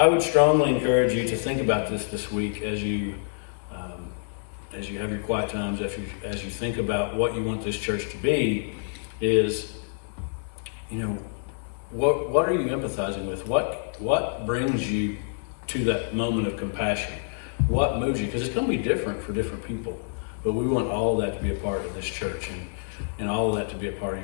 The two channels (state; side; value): silent; right; 60 dB below the other